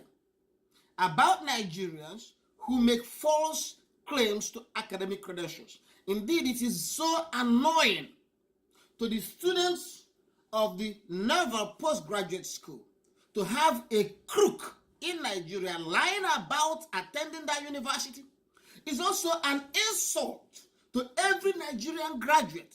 about Nigerians who make false claims to academic credentials. Indeed, it is so annoying to the students of the Naval Postgraduate School to have a crook in Nigeria lying about attending that university. It's also an insult to every Nigerian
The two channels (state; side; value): identical; both; correlation 1.00